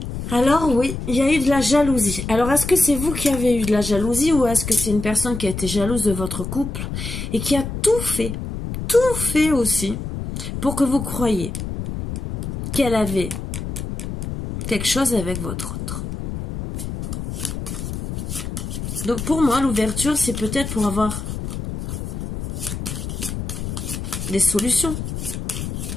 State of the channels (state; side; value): noise; left; rumble, 6 dB below the sound